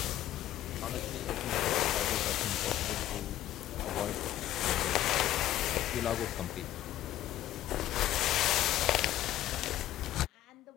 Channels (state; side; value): quieter; right; 13.4 dB